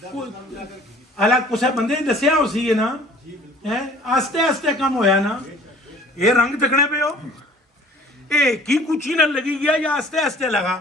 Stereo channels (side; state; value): both; normal; correlation 0.51